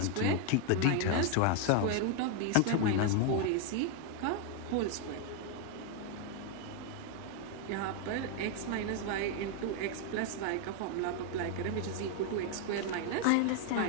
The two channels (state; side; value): different; both; correlation 0.00